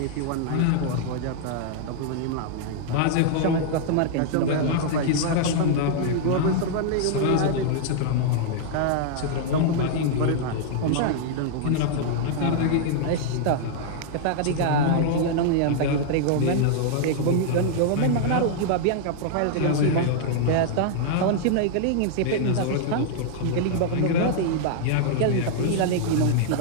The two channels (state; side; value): different; both; correlation -0.01